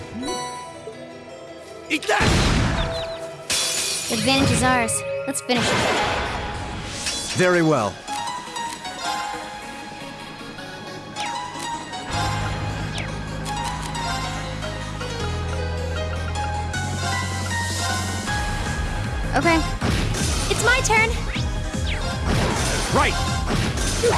Eat that! Advantage is ours. Let's finish it. Very well. Okay. It's my turn! Right!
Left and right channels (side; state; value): both; identical; correlation 1.00